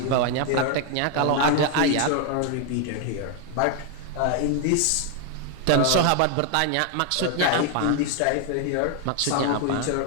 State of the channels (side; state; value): both; different; correlation 0.01